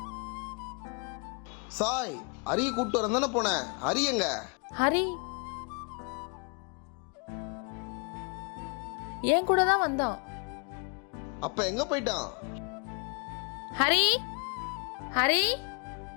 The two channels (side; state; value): right; quieter; 35.0 dB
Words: சாய், ஹரி கூப்பிட்டு வரேன் தானே போனேன். ஹரி எங்க? ஹரி என் கூட தான் வந்தான். அப்ப எங்க போயிட்டான்? ஹரி ஹரி